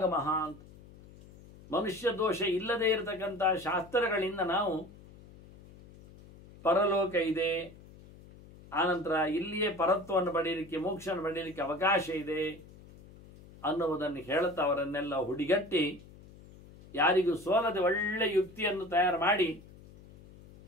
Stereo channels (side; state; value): left; noise; hum, 21 dB below the sound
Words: ಅಂತ, ಮನುಷ್ಯ ದೋಷ ಇಲ್ಲದೆ ಇರತಕ್ಕಂಥ ಶಾಸ್ತ್ರಗಳಿಂದ ನಾವು ಪರಲೋಕ ಇದೆ, ಆನಂತರ ಇಲ್ಲಿಯೇ ಪರತ್ವವನ್ನು ಪಡೆಯಲಿಕ್ಕೆ, ಮೋಕ್ಷವನ್ನು ಪಡೆಯಲಿಕ್ಕೆ ಅವಕಾಶ ಇದೆ ಅನ್ನುವುದನ್ನು ಹೇಳುತ್ತಾ ಅವರನ್ನೆಲ್ಲ ಹುಡಿಗಟ್ಟಿ ಯಾರಿಗೂ ಸೋಲದೆ ಒಳ್ಳೆ ಯುಕ್ತಿಯನ್ನು ತಯಾರು ಮಾಡಿ